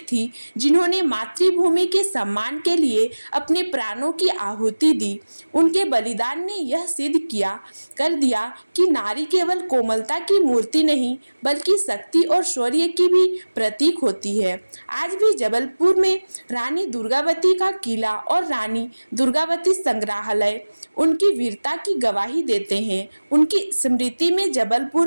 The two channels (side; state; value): both; inverted; correlation -1.00